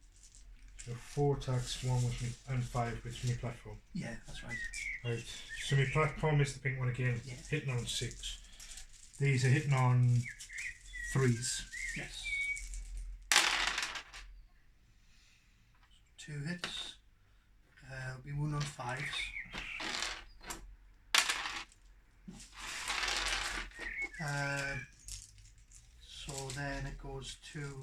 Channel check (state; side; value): identical; both; correlation 1.00